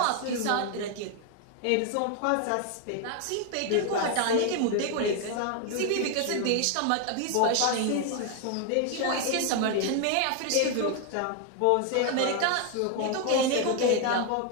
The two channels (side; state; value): both; different; correlation 0.01